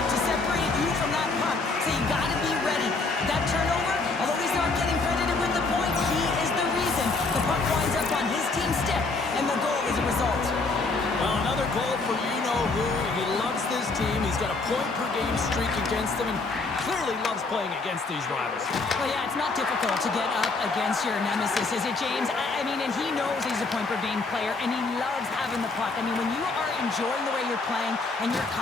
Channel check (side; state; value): right; quieter; 3.7 dB